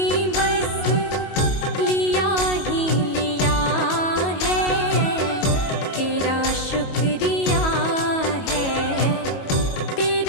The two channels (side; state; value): right; late; 22 ms